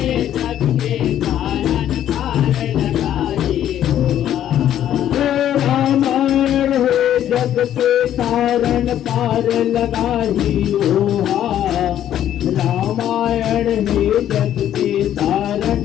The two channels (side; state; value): right; quieter; 11.1 dB